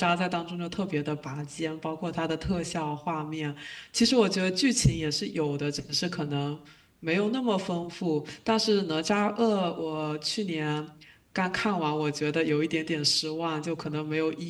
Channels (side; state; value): both; identical; correlation 1.00